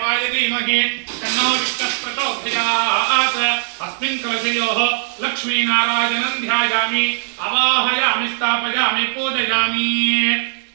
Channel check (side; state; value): left; silent; digital silence